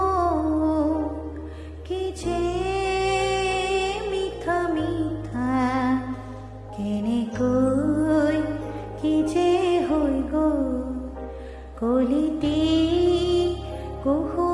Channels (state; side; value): identical; both; correlation 1.00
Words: কি যে মিঠা মিঠা কেনেকৈ কি যে হৈ গ'ল কলিটি